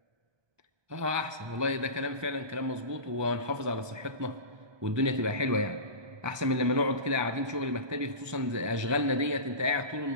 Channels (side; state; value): left; late; 1.2 ms